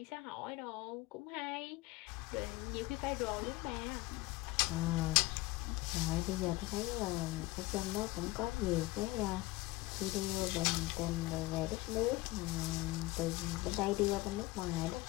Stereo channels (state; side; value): quieter; right; 19.9 dB